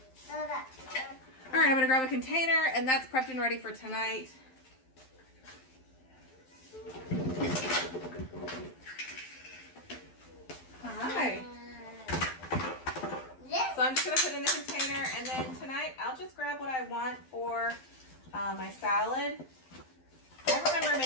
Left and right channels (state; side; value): late; right; 12 ms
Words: All right, I'm gonna grab a container, and that's prepped and ready for tonight. Hi. So I'm just going to put it in the container, and then tonight I'll just grab what I want for my salad. I remember